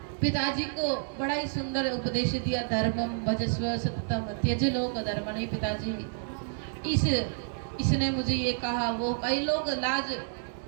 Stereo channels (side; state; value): left; silent; digital silence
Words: पिताजी को बड़ा ही सुंदर उपदेश दिया, धर्मम भजस्व सततम त्यज लोक धर्म। नहीं पिताजी, इसने मुझे ये कहा, वो कई लोग लाज